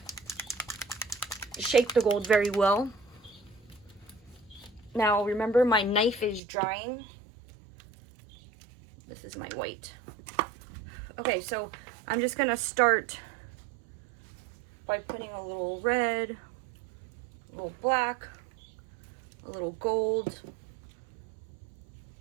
shake the gold very well. Now remember, my knife is drying. This is my white. Okay, so I'm just gonna start by putting a little red, a little black, a little gold,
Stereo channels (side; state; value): left; drops out; at 6.4 s